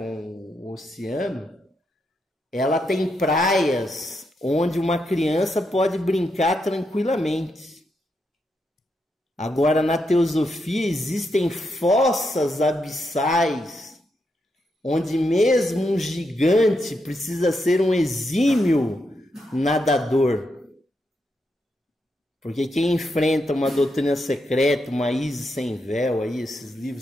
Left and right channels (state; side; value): normal; both; correlation 0.82